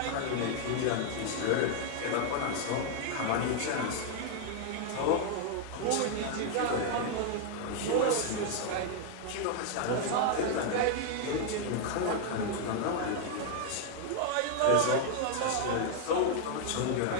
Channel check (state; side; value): different; both; correlation 0.00